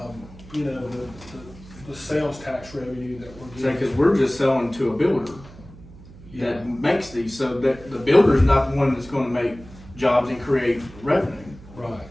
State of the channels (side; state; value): right; noise; hum, 19 dB below the sound